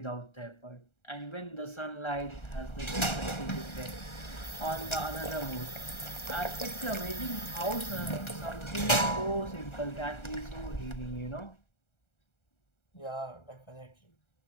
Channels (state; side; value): late; right; 1.3 ms